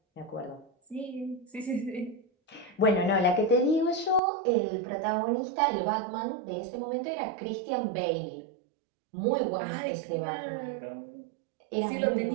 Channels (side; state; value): left; drops out; at 4.2 s